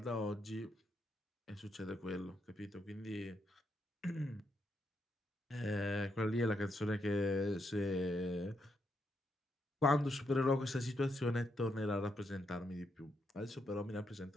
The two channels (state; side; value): normal; both; correlation 0.80